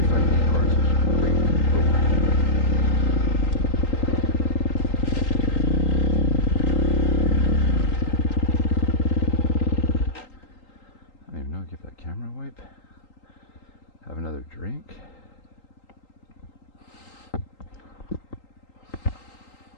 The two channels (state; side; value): late; right; 3.8 ms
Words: Give that camera a wipe. Have another drink.